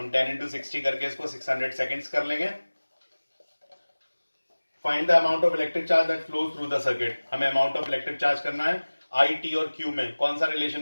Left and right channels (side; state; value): both; inverted; correlation -1.00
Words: हम 10 into 60 करके इसको 600 सेकेंड्स कर लेंगे। Find the amount of electric charge that flows through the circuit. हमें अमाउंट ऑफ इलेक्ट्रिक चार्ज करना है। आई टी और क्यू में कौन सा